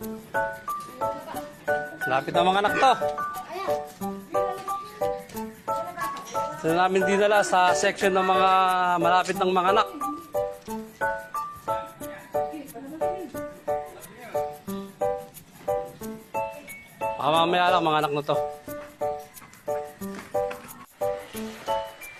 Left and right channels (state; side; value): identical; both; correlation 1.00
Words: Lapit ng mga anak to. Sila namin dinala sa section ng mga malapit ng mga anak. Baka mamaya lang mga anak na to.